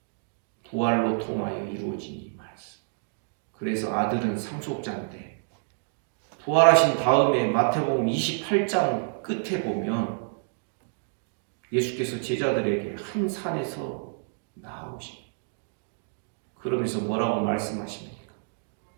부활로 통하여 이루어진 이 말씀. 그래서 아들은 상속자인데, 부활하신 다음에 마태복음 28장 끝에 보면 예수께서 제자들에게 한 산에서 나오십니다. 그러면서 뭐라고 말씀하십니까?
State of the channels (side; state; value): left; silent; digital silence